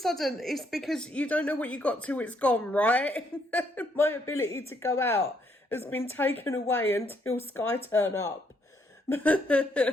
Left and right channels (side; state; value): both; normal; correlation 0.72